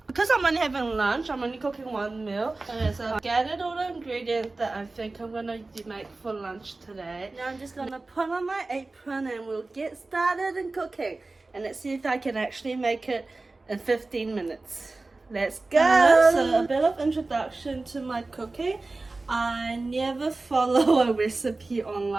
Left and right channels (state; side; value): quieter; left; 3.3 dB